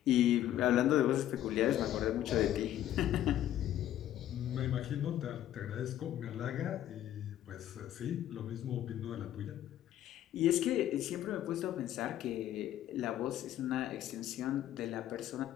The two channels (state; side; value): quieter; right; 12.2 dB